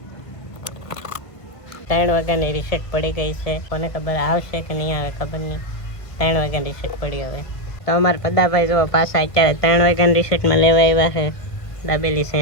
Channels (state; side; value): late; right; 1.5 ms